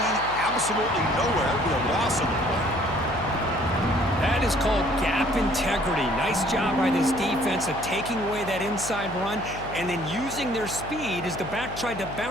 absolutely nowhere. Be a loss on the play. That is called gap integrity. Nice job by this defense of taking away that inside run and then using their speed as the back tried to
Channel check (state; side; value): noise; left; hum, 12 dB below the sound